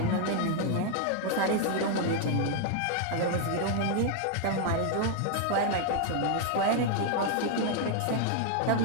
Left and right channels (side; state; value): both; different; correlation 0.00